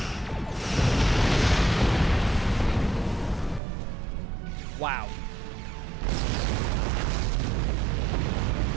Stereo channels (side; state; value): left; drops out; at 3.6 s